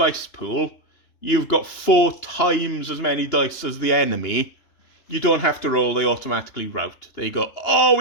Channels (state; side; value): late; right; 2.9 ms